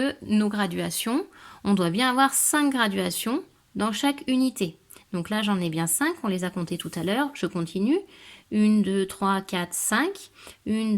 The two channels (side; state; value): both; identical; correlation 1.00